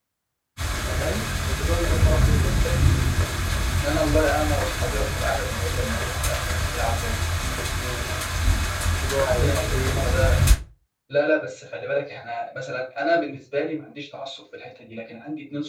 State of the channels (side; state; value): both; identical; correlation 1.00